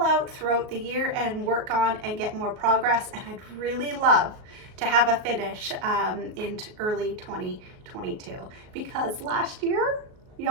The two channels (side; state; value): left; late; 38 ms